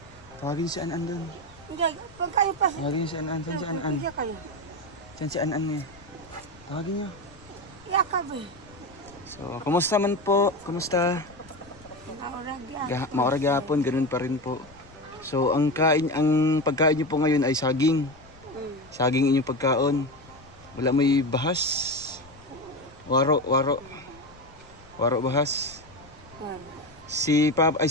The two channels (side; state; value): left; noise; rumble, 24 dB below the sound